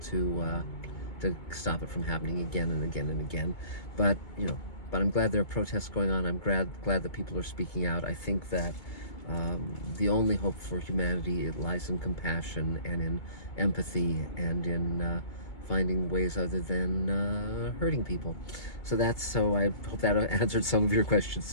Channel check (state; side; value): late; right; 2.2 ms